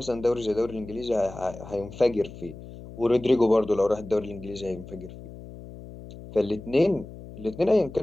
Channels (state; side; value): noise; left; hum, 15 dB below the sound